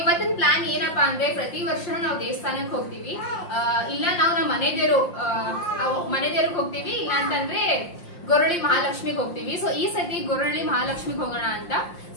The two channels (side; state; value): right; late; 5.7 ms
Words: ಪ್ಲಾನ್ ಏನಪ್ಪಾ ಅಂದ್ರೆ, ಪ್ರತಿ ವರ್ಷನೂ ನಾವು ದೇವಸ್ಥಾನಕ್ಕೆ ಹೋಗ್ತೀವಿ, ಇಲ್ಲ ನಾವು ನಮ್ಮ ಮನೆದೇವ್ರಿಗೆ ಹೋಗ್ತೀವಿ, ಇಲ್ಲ ಅಂತಂದ್ರೆ ಗೊರಳಿ ಮಹಾಲಕ್ಷ್ಮಿಗೆ ಹೋಗ್ತೀವಿ. ಸೊ ಈ ಸತಿ ಗೊರಳಿ ಮಹಾಲಕ್ಷ್ಮಿಗೆ ಹೋಗೋಣ ಅಂತ.